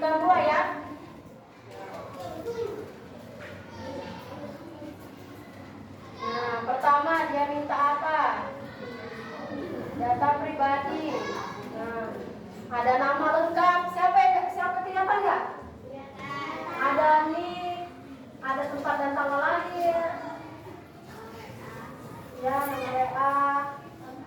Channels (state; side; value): identical; both; correlation 1.00